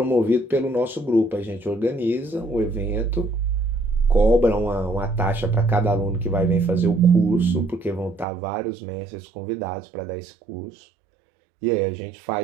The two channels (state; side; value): drops out; left; at 8.2 s